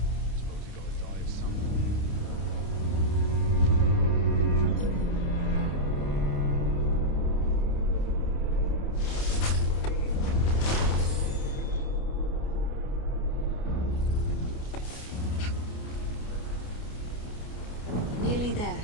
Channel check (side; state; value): right; late; 29 ms